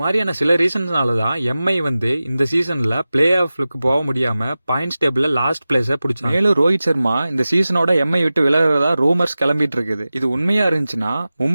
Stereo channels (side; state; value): both; inverted; correlation -0.95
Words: மாதிரியான சில ரீசன்ஸ்னால தான் எம்ஐ வந்து இந்த சீசன்ல பிளே ஆஃப்க்கு போக முடியாம பாயிண்ட்ஸ் டேபிள்ல லாஸ்ட் பிளேஸ பிடிச்சாங்க. மேலும் ரோஹித் சர்மா இந்த சீசனோட எம்ஐ விட்டு விலகிறதா ரூமர்ஸ் கிளம்பிட்டு இருக்குது. இது உண்மையா இருந்துச்சுன்னா